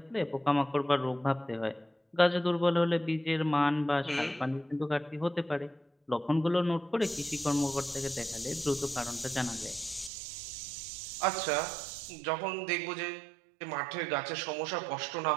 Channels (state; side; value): drops out; left; at 10.1 s